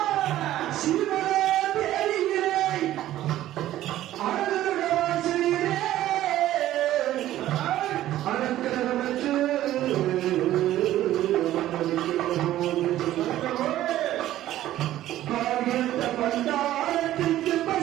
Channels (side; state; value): left; quieter; 13.7 dB